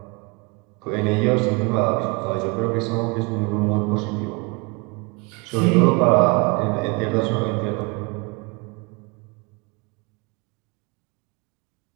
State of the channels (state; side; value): quieter; left; 28.3 dB